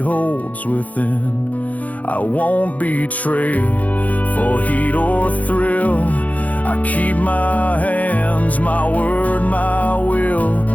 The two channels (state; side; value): late; right; 0.073 ms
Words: within. I won't betray for heat or thrill. I keep my hands, my word, my will.